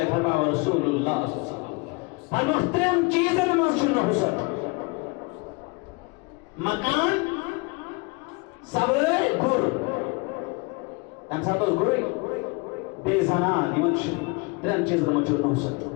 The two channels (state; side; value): quieter; right; 28.4 dB